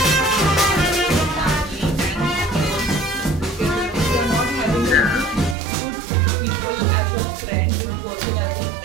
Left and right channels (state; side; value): drops out; left; at 5.6 s